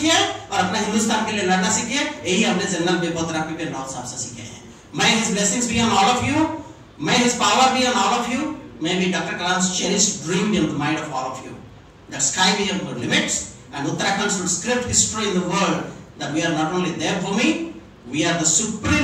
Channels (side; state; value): both; identical; correlation 1.00